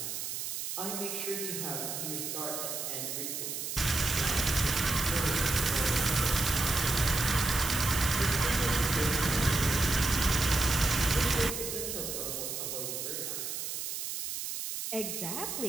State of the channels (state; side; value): noise; right; hiss, 4 dB below the sound